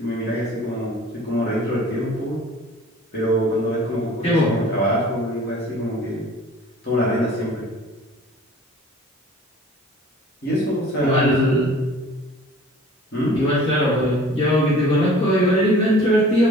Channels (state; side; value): normal; both; correlation 0.48